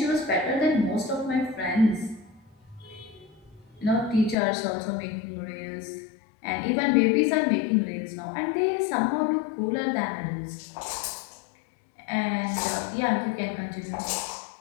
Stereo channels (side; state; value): right; drops out; at 4.4 s